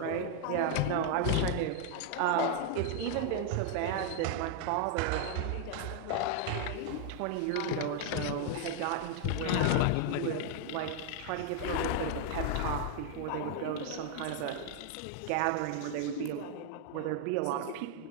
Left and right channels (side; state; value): both; different; correlation 0.00